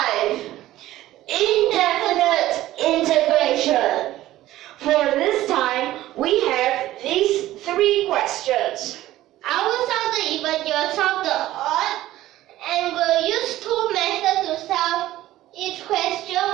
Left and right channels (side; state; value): left; quieter; 15.1 dB